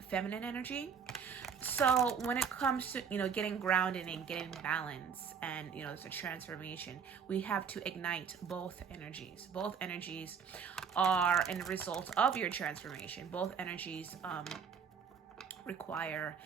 energy. So when it comes to, getting grounded and getting balance and, it's a transformation, we have to ignite both energies. Both energies are a result of your transformation. Both energies require,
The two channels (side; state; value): left; quieter; 6.7 dB